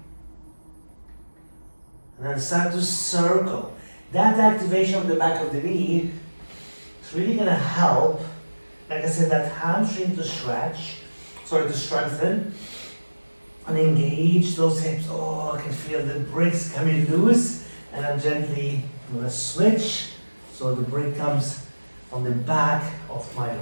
and then start to circle. That activation of the back of the knee is really going to help, like I said, that hamstring to strengthen, and engage those hips. Oh, I can feel the bricks coming loose, and I'm gently going to switch. So the brick comes on the back of my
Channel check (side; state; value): both; inverted; correlation -1.00